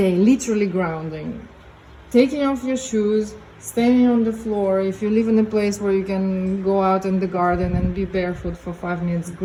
literally grounding, taking off your shoes, standing on the floor. If you live in a place where you can go out in the garden and be barefoot for 5 minutes,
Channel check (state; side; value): identical; both; correlation 1.00